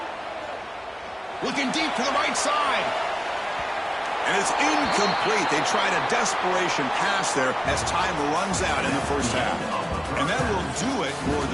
Looking deep to the right side. And it's incomplete. They tried a desperation pass there as time runs out in the first half. And that will do it for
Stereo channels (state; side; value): identical; both; correlation 1.00